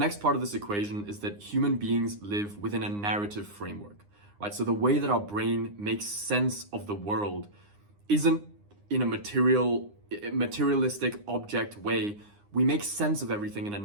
part of this equation is that human beings live within a narrative framework, right? So the way that our brain makes sense of the world isn't in a materialistic object way. We make sense of everything in a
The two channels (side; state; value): left; late; 9.8 ms